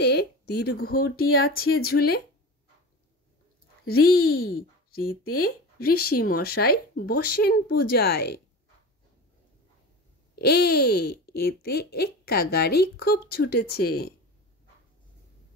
দীর্ঘটি আছে ঝুলে। রি রিতে ঋষি মশাই বসেন পূজায়। এতে এক্কা গাড়ি খুব ছুটেছে।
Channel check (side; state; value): both; normal; correlation 0.31